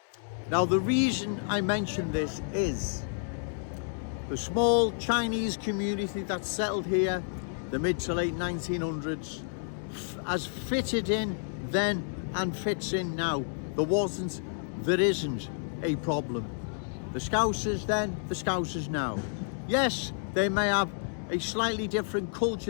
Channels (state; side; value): silent; right; digital silence